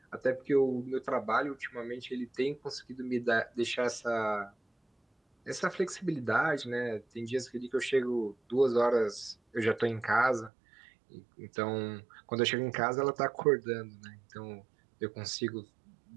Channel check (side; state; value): left; drops out; at 10.5 s